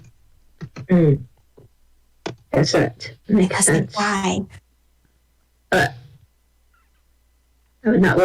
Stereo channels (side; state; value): both; identical; correlation 1.00